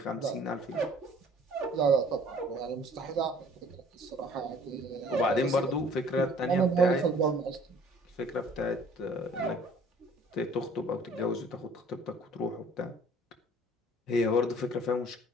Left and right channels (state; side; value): normal; both; correlation 0.53